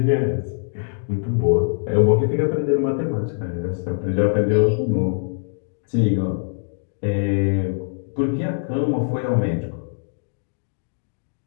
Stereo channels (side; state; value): right; silent; digital silence